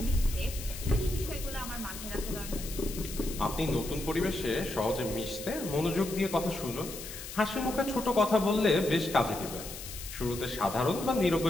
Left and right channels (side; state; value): left; noise; hiss, 10 dB below the sound